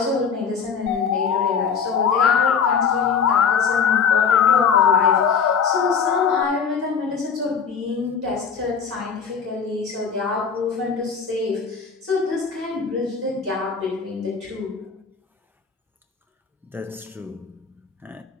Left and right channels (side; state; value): right; quieter; 6.3 dB